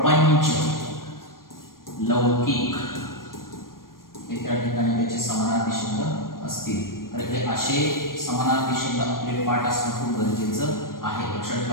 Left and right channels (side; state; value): right; late; 0.91 ms